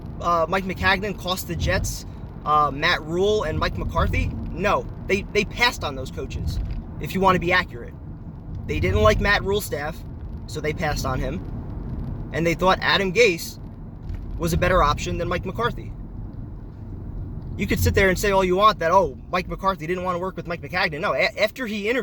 Maccagnan cost the Jets Matt Rule and Mike McCarthy. No, they passed on those coaches, if you want to be accurate. They didn't like Matt Rule's staff, so they passed on him. And they thought Adam Gase was a better option than Mike McCarthy. You could sit there and say all you want that, Mike McCarthy didn't want to work with Mike Maccagnan. No, after he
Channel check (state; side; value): identical; both; correlation 1.00